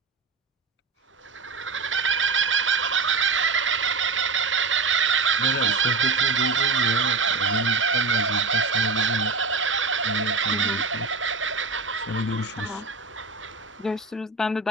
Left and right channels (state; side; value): quieter; left; 4.4 dB